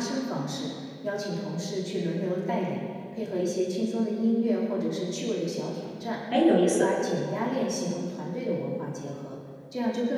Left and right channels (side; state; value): both; identical; correlation 1.00